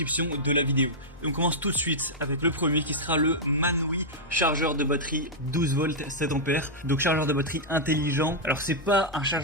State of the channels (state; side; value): noise; left; hum, 24 dB below the sound